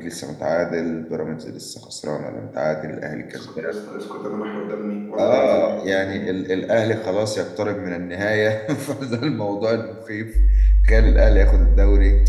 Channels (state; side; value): identical; both; correlation 1.00